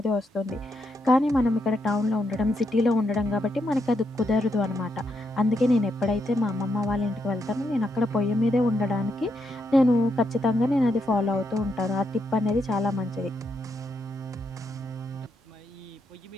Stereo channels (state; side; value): normal; both; correlation 0.80